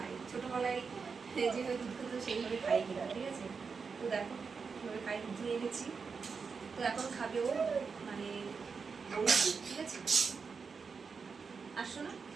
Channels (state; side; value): quieter; left; 5.3 dB